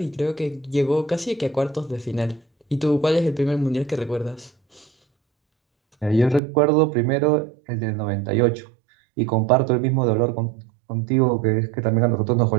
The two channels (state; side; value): drops out; left; at 6.4 s